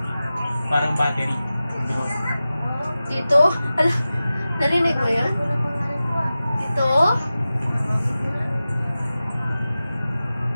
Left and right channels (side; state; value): both; inverted; correlation -0.95